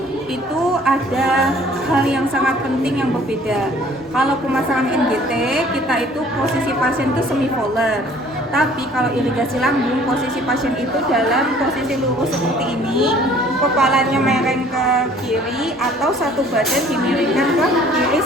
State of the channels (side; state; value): both; normal; correlation 0.54